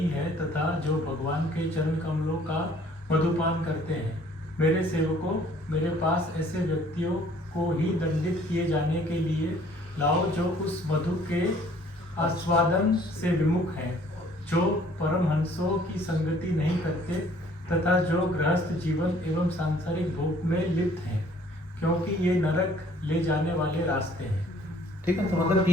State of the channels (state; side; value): normal; both; correlation 0.57